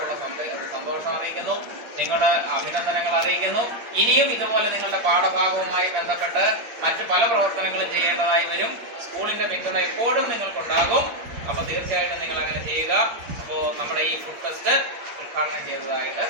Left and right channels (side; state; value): left; late; 8.6 ms